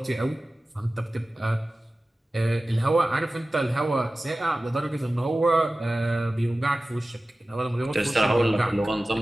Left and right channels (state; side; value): normal; both; correlation 0.96